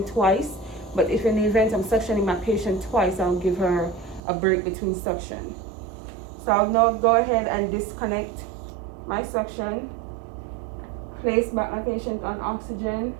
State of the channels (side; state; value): left; drops out; at 4.2 s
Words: twice. But if in the event I'm suctioning my patient twice, I'll give her a break between suction. So I'll now go ahead and disconnect my suction, place back my patient on oxygen,